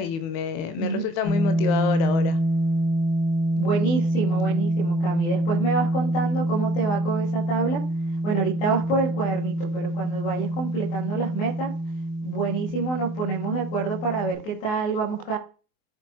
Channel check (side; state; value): right; late; 25 ms